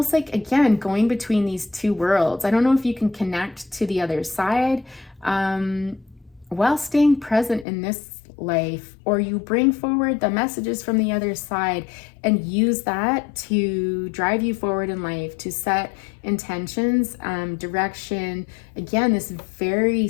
like, again, going between these two worlds. I don't know if you can connect to the other side while staying present in this life, or you bring forward the messages from the other side and use that to drive you forward in life, to set intentions, direction. Again, this very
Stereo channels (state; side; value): drops out; right; at 7.7 s